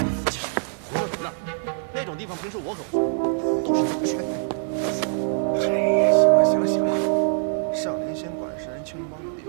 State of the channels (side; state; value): left; silent; digital silence